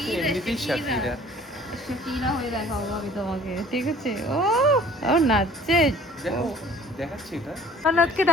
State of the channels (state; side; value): normal; both; correlation 0.52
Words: এমনিতেই শাকিরা। শাকিরা হয়ে দেখাবো আমি তোমাকে, ঠিক আছে। ও নাচছে, দেখো দেখাচ্ছি এটা। নাচকে